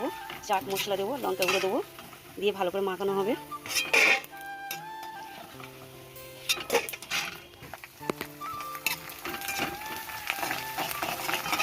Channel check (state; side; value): identical; both; correlation 1.00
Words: চাট মশলা দেবো, লঙ্কা গুঁড়ো দেবো, দিয়ে ভালো করে মাখানো হবে।